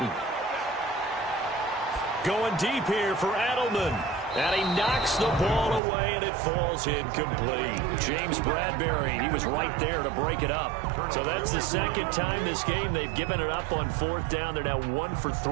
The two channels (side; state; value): left; drops out; at 5.8 s